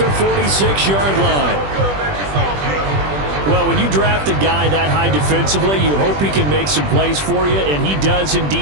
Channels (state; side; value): late; left; 20 ms